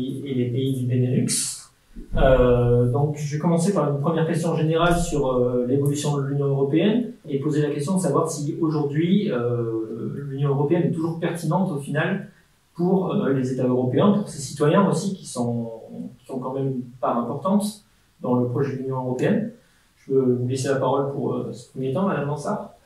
les pays du Benelux. Donc je vais commencer par une première question générale sur l'évolution de l'Union européenne et poser la question de savoir si aujourd'hui l'Union européenne est toujours pertinente au final pour les États européens, pour ses citoyens aussi, qui sont quand même une part importante dans le projet de l'Union européenne. Je veux vous laisser la parole pour ce premier temps, Madame Mansart.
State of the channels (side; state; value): both; identical; correlation 1.00